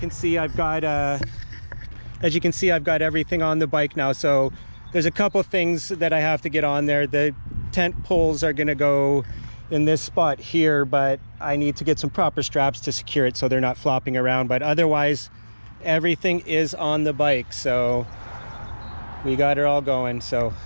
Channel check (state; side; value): inverted; both; correlation -1.00